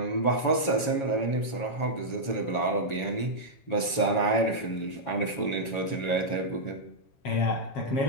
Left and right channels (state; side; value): late; right; 7.2 ms